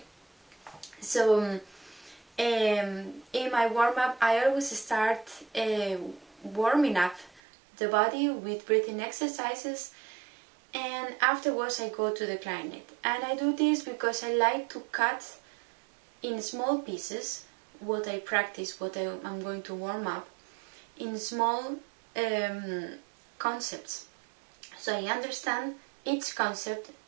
So in my warm-up I always start warming up the body with breathing exercises, and afterwards I go to the clarinet. And I do this because I like to cut in small pieces what I practice, what I'm going to warm up, in small concepts. So I understand each concept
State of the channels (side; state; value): left; drops out; at 7.4 s